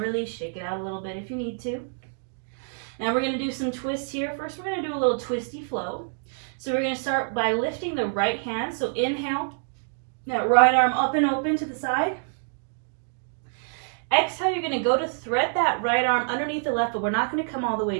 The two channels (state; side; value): silent; left; digital silence